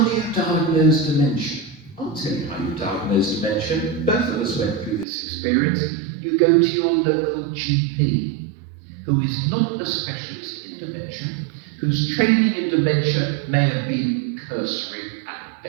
do you diagnose dementia? I'll tell you how you diagnose dementia. Both of us went through this experience. You go to your local GP, who is not a specialist in dementia, whose training in dementia may have been cursory at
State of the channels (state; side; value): drops out; left; at 5.1 s